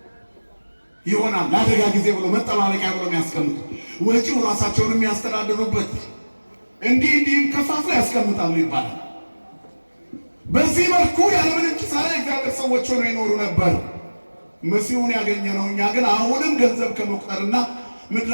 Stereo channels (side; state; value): both; inverted; correlation -1.00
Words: ይሆናል። ለአደጋ ጊዜ ብሎ መጠባበቂያ ብሎ የሚያስቀምጡ፣ ወጪው ራሳቸውን የሚያስተዳድሩበት እንዲህም ከፋፍለው ያስቀምጣሉ ይባላል። በዚህ መልኩ ያለምንም ኪሳራ እግዚአብሔር ሰዎች ሆነው ይኖሩ ነበር። መሲሁን ያገኘነው እኛ ግን አሁንም ገንዘብ ከመቁጠርና